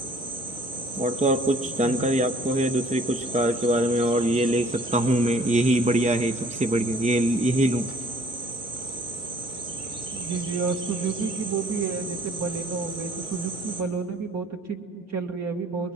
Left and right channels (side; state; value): both; normal; correlation 0.58